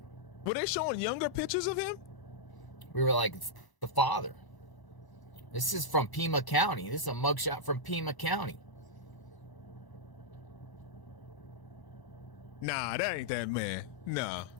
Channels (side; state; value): right; late; 1.0 ms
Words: Were they showing younger pictures of him? We were like, it's the father. This is from Pima County. This is a mugshot from Pima County. Nah, that ain't that man. Nah.